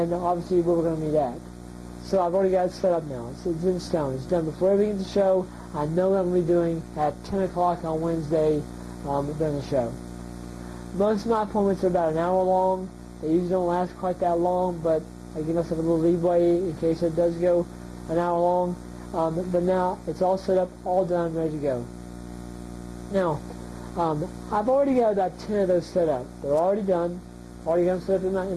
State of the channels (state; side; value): identical; both; correlation 1.00